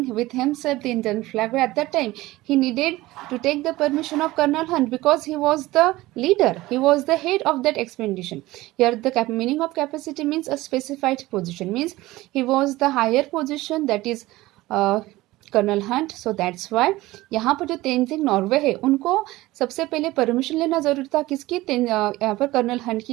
with himself the Indian flag, but at that time he needed to take the permission of Colonel Hunt because he was the leader, he was the head of that expedition. Here the meaning of capacity means a specified position, means he was the higher position, that is Colonel Hunt. So that's why यहाँ पर जो तेंजिंग नॉर्वे है उनको सबसे पहले परमिशन लेना जरूरी था. किसकी? यहाँ पर कर्नल हंट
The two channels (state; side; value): quieter; left; 18.4 dB